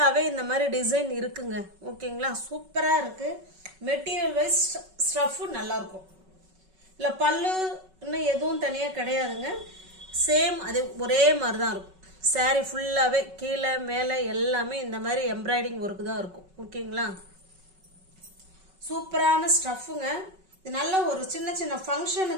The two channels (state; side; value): late; left; 5.3 ms